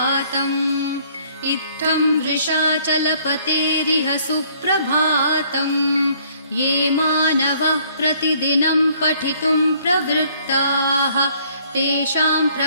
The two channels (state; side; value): inverted; both; correlation -0.61